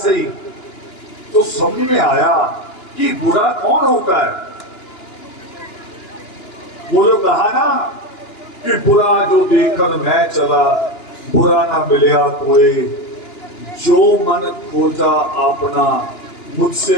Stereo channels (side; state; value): right; late; 2.9 ms